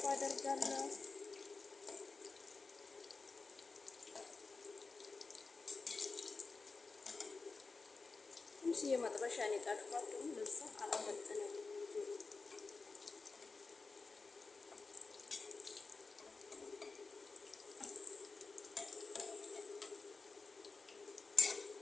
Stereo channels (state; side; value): quieter; right; 4.1 dB